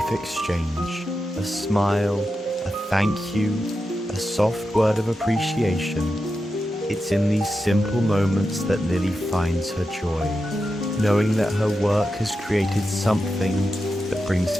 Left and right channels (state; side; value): normal; both; correlation 0.89